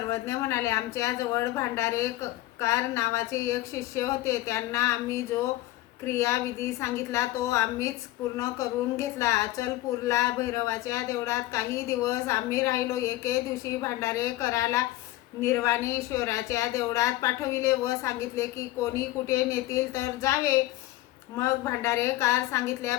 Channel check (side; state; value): right; quieter; 17.0 dB